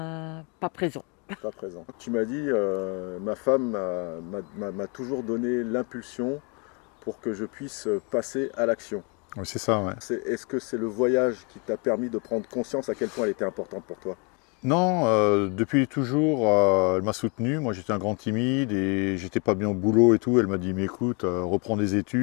présent. pas présent. Tu m'as dit, ma femme m'a toujours donné l'impulsion pour que je puisse passer à l'action. Oui, c'est ça, ouais. Est-ce que c'est le voyage qui t'a permis de prendre conscience à quel point elle était importante pour toi? Non, depuis toujours, elle m'a soutenu. Moi, j'étais un grand timide et j'étais pas bien au boulot et tout. Elle m'a dit, mais écoute, reprends des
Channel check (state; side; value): quieter; right; 33.4 dB